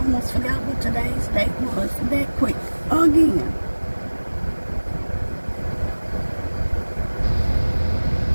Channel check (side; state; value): both; inverted; correlation -1.00